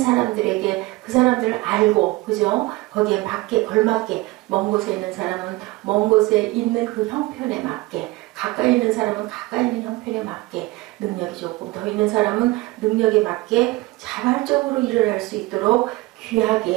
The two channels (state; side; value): quieter; left; 20.9 dB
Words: 그 사람들을 알고, 그죠? 거기에 맞게 걸맞게, 먼 곳에 있는 사람은 먼 곳에 있는 그 형편에 맞게, 가까이 있는 사람은 가까이 있는 형편에 맞게, 능력이 조금 더 있는 사람은 능력에 맞게 자발적으로 일을 할 수 있도록